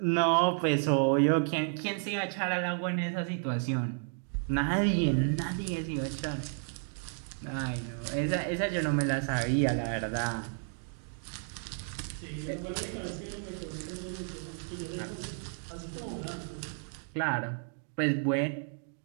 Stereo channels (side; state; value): left; silent; 56 dB below the other